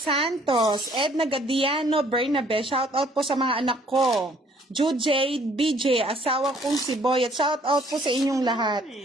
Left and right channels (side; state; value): both; normal; correlation 0.61